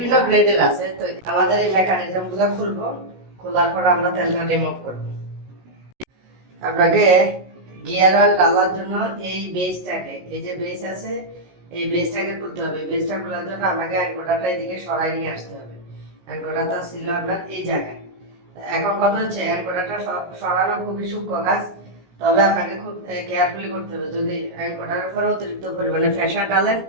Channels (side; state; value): left; late; 16 ms